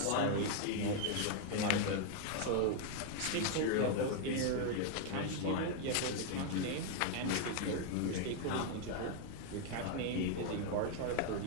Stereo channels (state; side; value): different; both; correlation 0.00